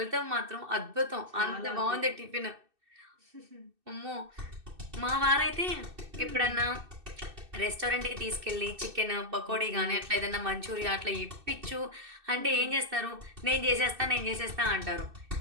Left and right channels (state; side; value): late; left; 2.6 ms